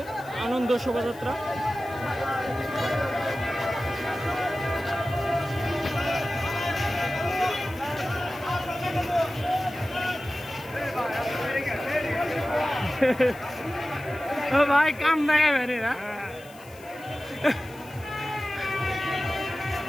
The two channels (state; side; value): noise; left; hiss, 23 dB below the sound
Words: আনন্দ শোভাযাত্রা। ও ভাই কাম দেখাবে না